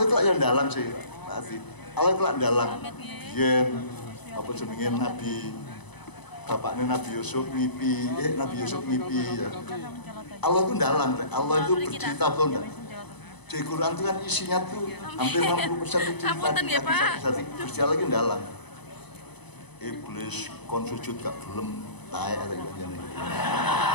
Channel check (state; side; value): late; right; 0.99 ms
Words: itu yang dalang sih, Pak. Allah itu yang dalang. Yen apa jenenge Nabi bapaknya Nabi Yusuf ngipi, Nabi Yusuf ngipi ya. Allah itu dalang, Allah itu bercerita betul enggak? Di Quran itu kan isinya tuh hampir 60% itu cerita. Terus dia lagi dalang. Iblis kon sujud gak belum tae ada yang